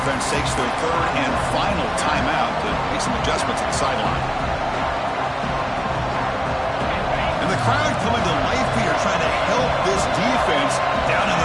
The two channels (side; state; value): both; identical; correlation 1.00